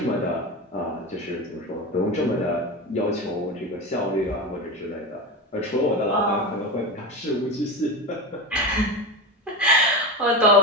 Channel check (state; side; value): normal; both; correlation 0.22